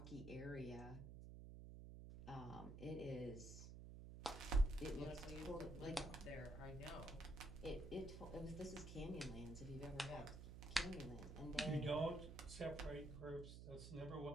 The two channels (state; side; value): noise; right; hum, 9 dB below the sound